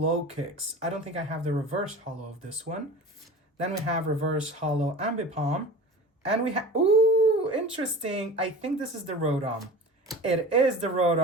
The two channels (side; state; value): both; normal; correlation 0.36